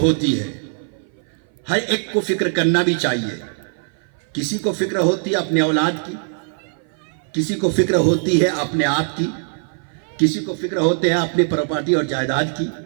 है, हर एक को फिक्र करना भी चाहिए। किसी को फिक्र होती है अपने औलाद की, किसी को फिक्र होती है अपने आप की, किसी को फिक्र होते हैं अपनी प्रॉपर्टी और जायदाद की।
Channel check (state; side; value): silent; left; 57 dB below the other